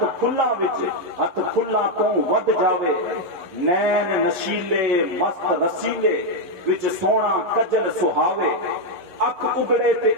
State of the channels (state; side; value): late; left; 11 ms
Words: کھلاں وچ ہاتھ کھلاں تو ود جاوے, نین نشیلے مست رسیلے وچ سونا کجل سہاوے, اکھ اگڑے تے